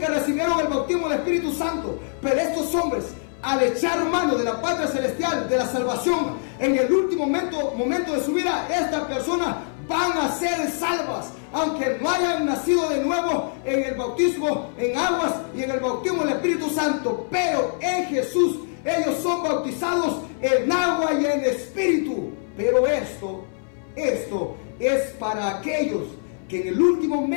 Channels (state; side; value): silent; right; 59 dB below the other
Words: recibieron el bautismo del Espíritu Santo. Pero estos hombres, al echar mano de la patria celestial, de la salvación, en el último momento de su vida, estas personas van a ser salvas, aunque no hayan nacido de nuevo en el bautismo en aguas y en el bautismo del Espíritu Santo. Pero en Jesús ellos son bautizados en agua y en espíritu. Pero esto es para aquellos que en el último